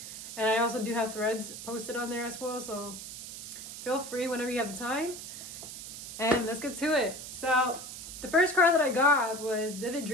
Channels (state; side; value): noise; right; hiss, 10 dB below the sound